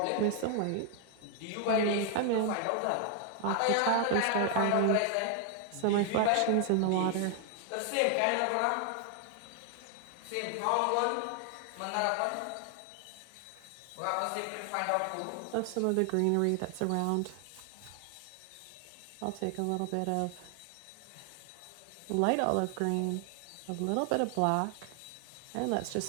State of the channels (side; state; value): both; different; correlation 0.00